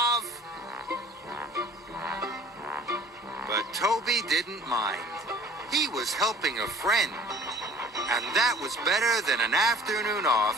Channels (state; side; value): normal; both; correlation 0.49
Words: But Toby didn't mind. He was helping a friend, and that was better than an afternoon